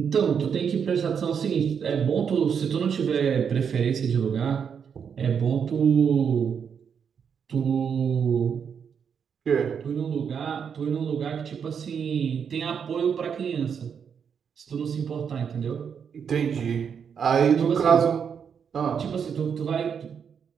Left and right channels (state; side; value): quieter; left; 7.1 dB